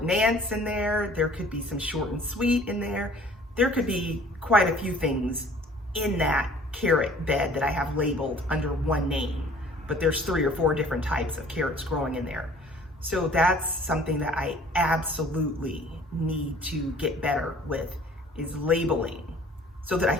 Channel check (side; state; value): both; normal; correlation 0.52